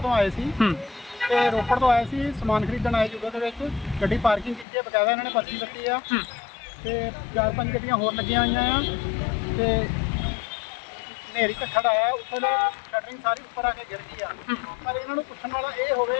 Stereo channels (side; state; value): right; drops out; at 4.7 s